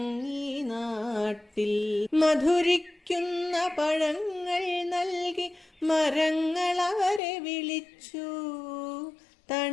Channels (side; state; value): right; drops out; at 7.2 s